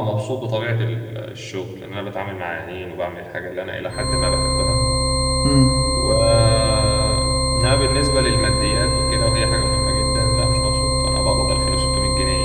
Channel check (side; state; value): both; identical; correlation 1.00